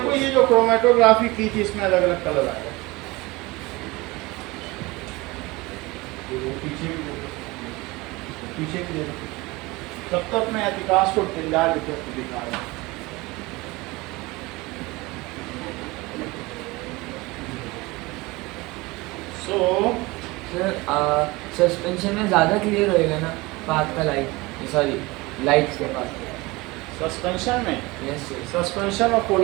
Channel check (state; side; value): quieter; left; 22.6 dB